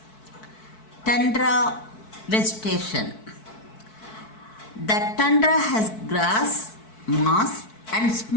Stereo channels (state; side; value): late; right; 4.6 ms